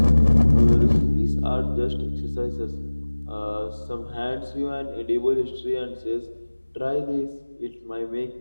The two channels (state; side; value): inverted; both; correlation -1.00